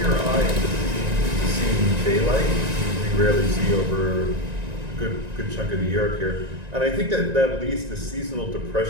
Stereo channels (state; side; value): late; left; 1.9 ms